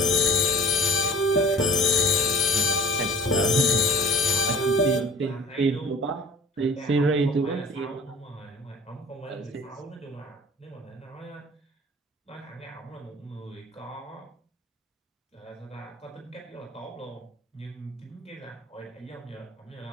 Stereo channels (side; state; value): both; normal; correlation 0.48